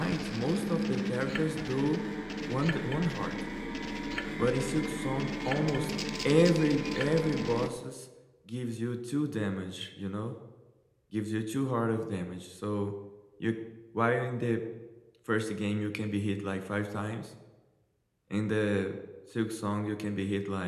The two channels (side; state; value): both; identical; correlation 1.00